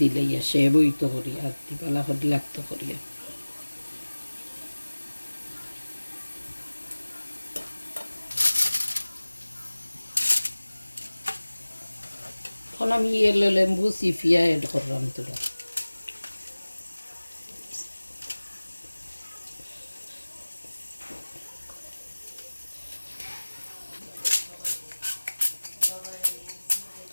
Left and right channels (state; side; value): inverted; both; correlation -1.00